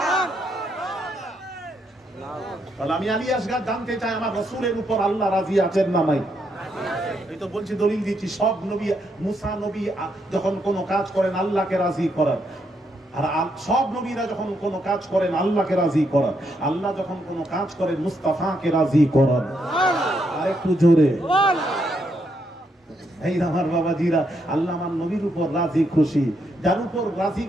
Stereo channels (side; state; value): both; normal; correlation 0.78